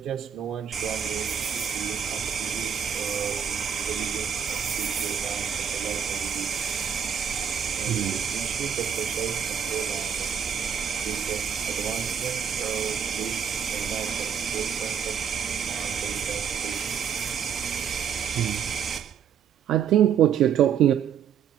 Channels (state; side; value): quieter; left; 8.1 dB